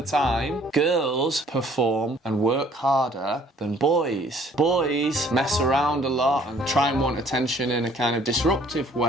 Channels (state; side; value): normal; both; correlation 0.58